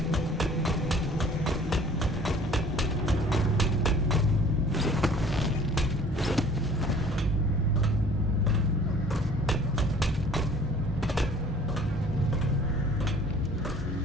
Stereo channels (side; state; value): both; normal; correlation 0.51